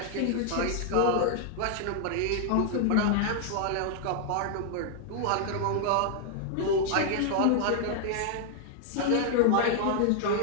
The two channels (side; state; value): both; different; correlation 0.00